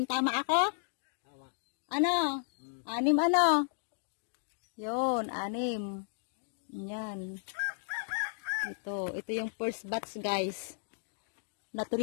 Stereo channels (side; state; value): right; silent; digital silence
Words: Tama ako? Tama. Ano? 6 ano? Yun, 6. Yan. Ito yung first batch guys. Na